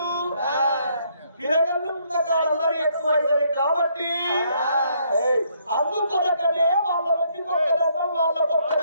పిల్లగాళ్ళు ఉన్న కాలంలో ఎక్కువైతుంది కాబట్టి అందుకొరకనే వాళ్ళ నుండి ఒక్క దండం వాళ్ళకు ఒక్క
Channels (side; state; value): both; inverted; correlation -0.70